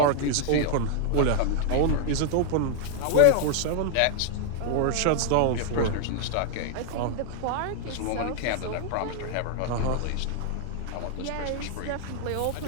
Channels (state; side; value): different; both; correlation 0.00